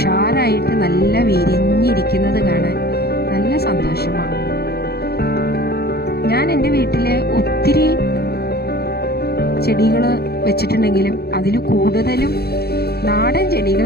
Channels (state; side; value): late; right; 0.46 ms